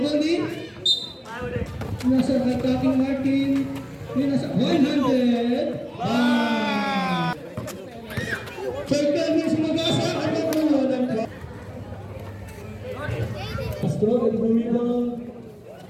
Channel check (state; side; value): identical; both; correlation 1.00